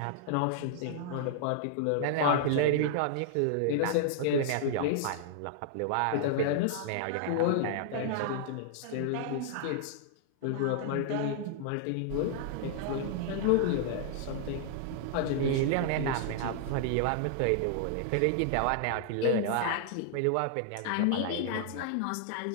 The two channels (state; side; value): different; both; correlation -0.01